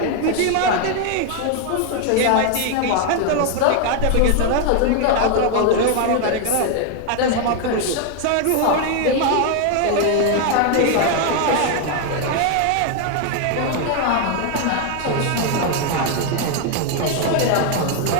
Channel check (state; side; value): different; both; correlation 0.01